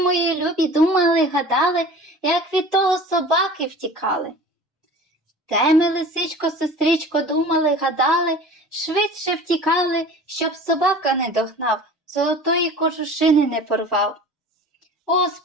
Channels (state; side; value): normal; both; correlation 0.41